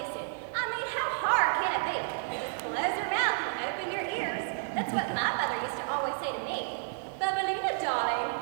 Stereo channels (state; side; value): silent; left; 57 dB below the other